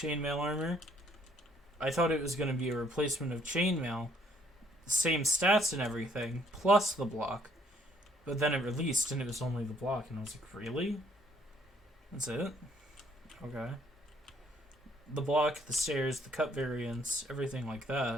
armor, I thought it was going to be a replacement of chainmail, same stats and everything, plus the block. But then it released and it was only the block, and I was like, really? That's it? Okay. The block, the stairs, the cut variants, everything like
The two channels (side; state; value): both; normal; correlation 0.65